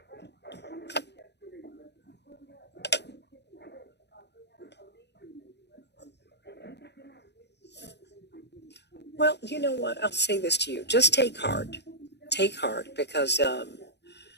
Well, you know what? I'll say this to you. Just take heart. Take heart because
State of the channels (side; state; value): right; late; 0.50 ms